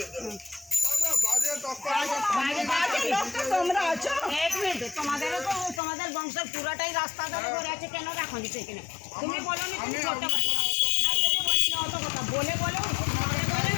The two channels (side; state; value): right; drops out; at 5.8 s